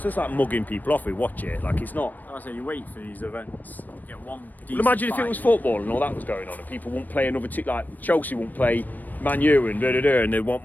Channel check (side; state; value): right; late; 0.086 ms